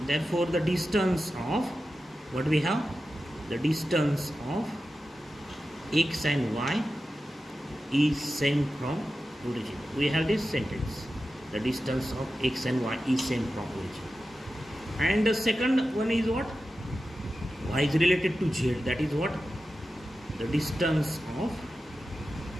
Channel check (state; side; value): normal; both; correlation 0.92